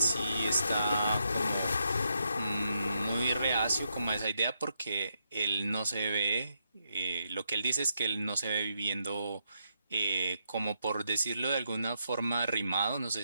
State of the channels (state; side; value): inverted; both; correlation -0.79